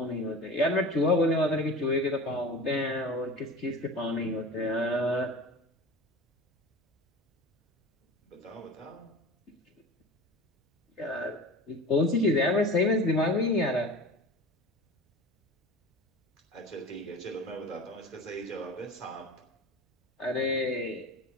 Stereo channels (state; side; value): normal; both; correlation 0.35